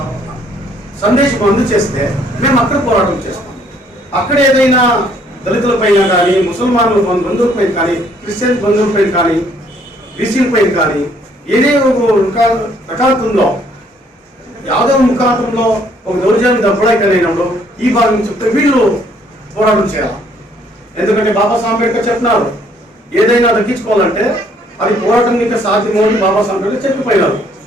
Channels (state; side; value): normal; both; correlation 0.64